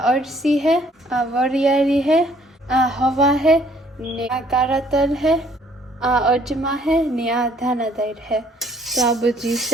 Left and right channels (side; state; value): both; normal; correlation 0.62